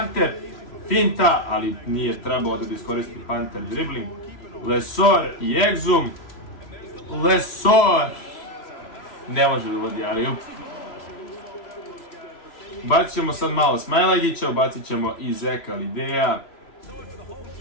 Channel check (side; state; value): right; late; 3.0 ms